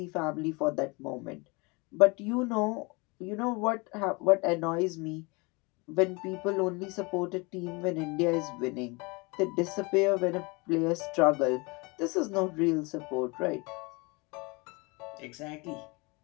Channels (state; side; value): quieter; right; 27.7 dB